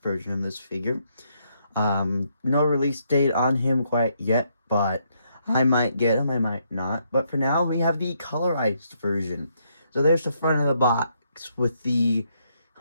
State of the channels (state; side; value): inverted; both; correlation -0.75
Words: version of this figure. No release date on him quite yet, but I might get him, I might not. But for now, we have the colorized version. So there's the front of the box with the